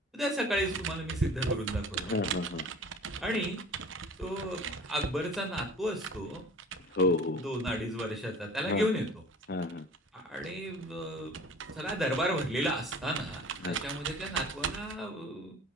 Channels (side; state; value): both; normal; correlation 0.44